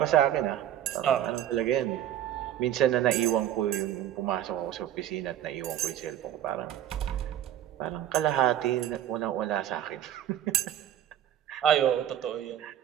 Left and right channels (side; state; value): left; quieter; 11.3 dB